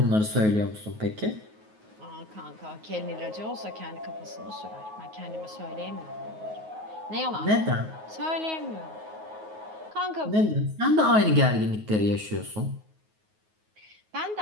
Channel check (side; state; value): left; late; 9.4 ms